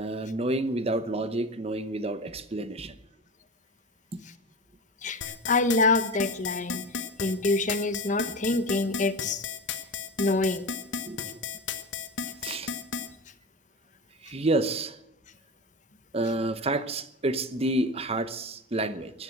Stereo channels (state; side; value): normal; both; correlation 0.27